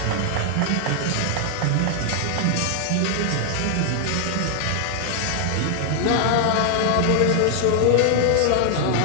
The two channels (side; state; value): both; different; correlation 0.00